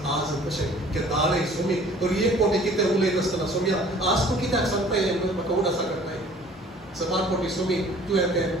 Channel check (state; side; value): normal; both; correlation 0.51